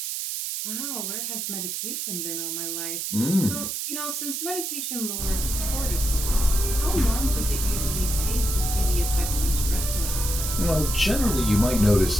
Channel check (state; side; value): noise; right; hiss, 3 dB below the sound